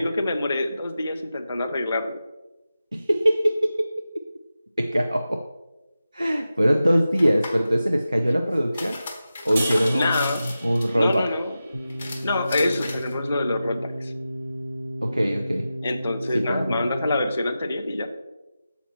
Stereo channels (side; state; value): both; inverted; correlation -0.93